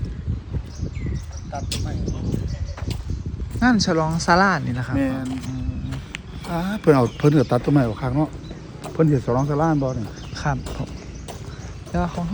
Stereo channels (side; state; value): both; identical; correlation 1.00